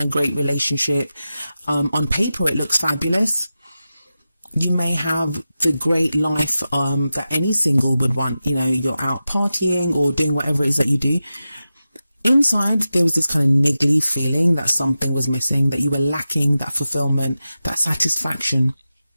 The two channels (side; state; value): both; inverted; correlation -0.93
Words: great relationship. On paper, it looks fabulous. You may have the great life that any single would want. You know, you're out partying or doing whatever it is that you do. Inside, there was this kind of niggly feeling that something was missing, that you were lacking that fulfillment, that satisfaction.